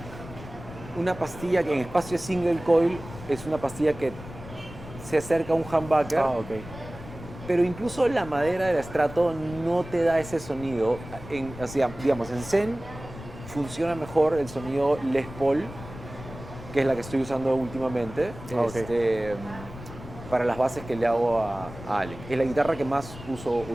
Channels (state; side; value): noise; left; rumble, 14 dB below the sound